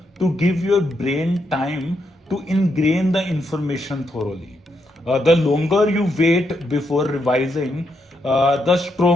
to give your brain time to ingrain the information thoroughly. The longer you wait before revising, the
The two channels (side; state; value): both; normal; correlation 0.80